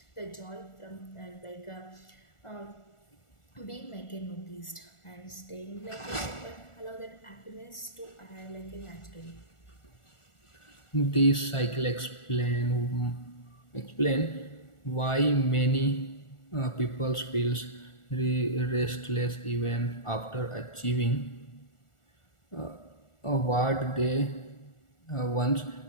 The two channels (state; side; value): late; right; 1.4 ms